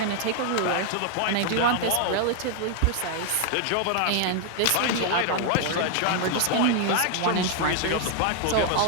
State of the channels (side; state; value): both; different; correlation 0.00